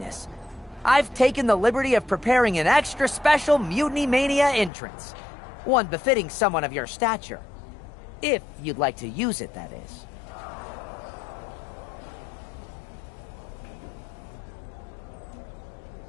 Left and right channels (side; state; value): right; drops out; at 4.7 s